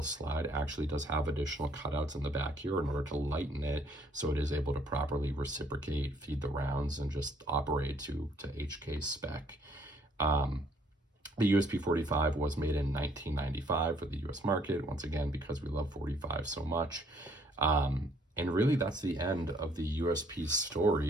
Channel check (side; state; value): both; normal; correlation 0.64